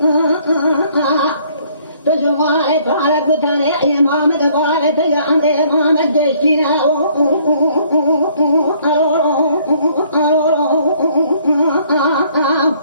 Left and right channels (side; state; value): both; inverted; correlation -0.62